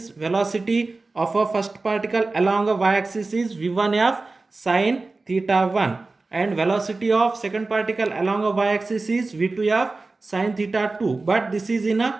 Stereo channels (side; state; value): left; quieter; 3.5 dB